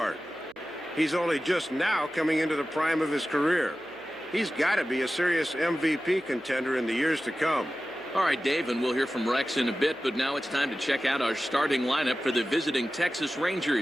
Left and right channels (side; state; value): right; noise; hum, 30 dB below the sound